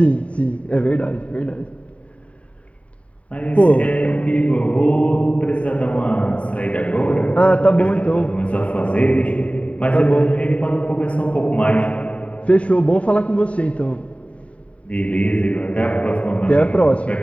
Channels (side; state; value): right; late; 0.065 ms